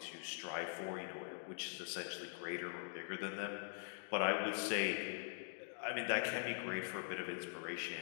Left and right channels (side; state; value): right; silent; digital silence